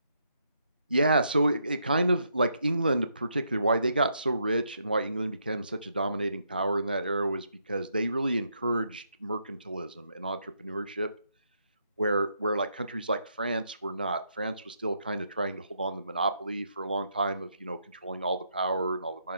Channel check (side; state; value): both; inverted; correlation -0.77